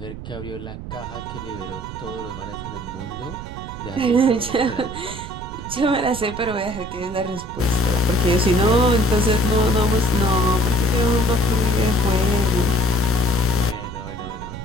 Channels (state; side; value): noise; right; rumble, 10 dB below the sound